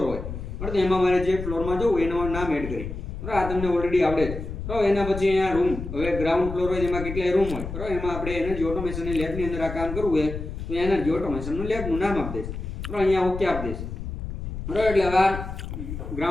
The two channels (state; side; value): noise; left; rumble, 7 dB below the sound